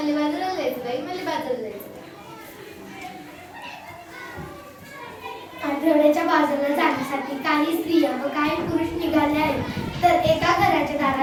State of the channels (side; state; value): both; identical; correlation 1.00